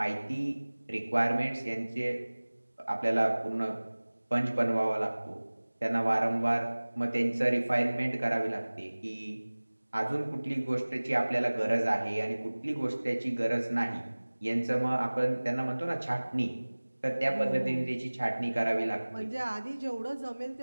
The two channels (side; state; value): both; inverted; correlation -1.00